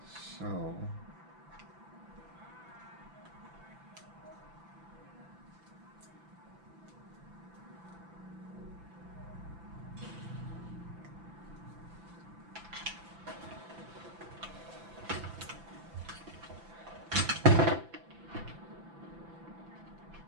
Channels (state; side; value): late; left; 5.9 ms